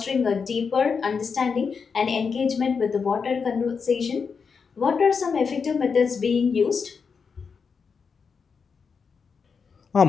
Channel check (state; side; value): quieter; right; 5.7 dB